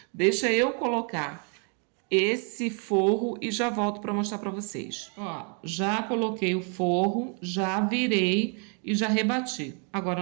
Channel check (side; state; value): left; quieter; 38.5 dB